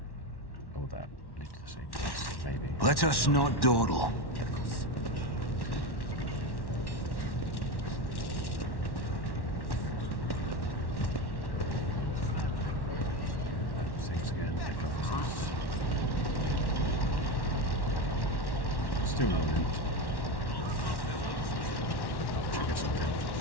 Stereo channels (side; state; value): right; late; 1.1 ms